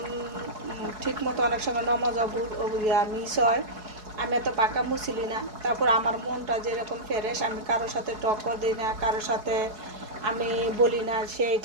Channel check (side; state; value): left; late; 4.7 ms